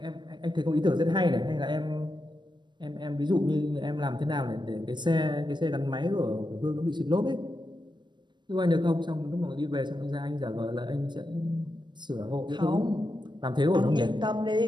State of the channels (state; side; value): late; left; 0.22 ms